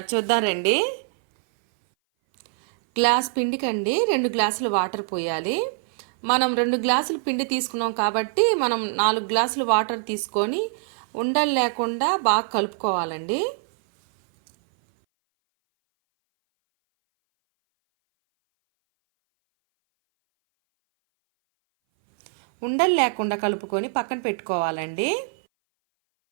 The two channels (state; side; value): silent; left; 59 dB below the other